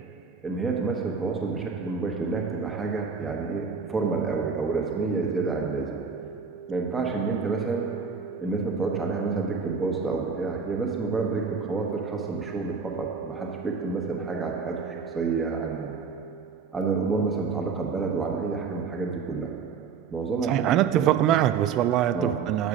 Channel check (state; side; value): quieter; left; 5.9 dB